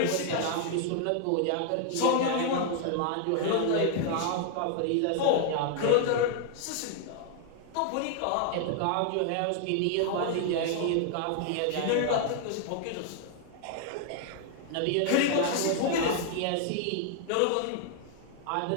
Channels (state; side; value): different; both; correlation 0.00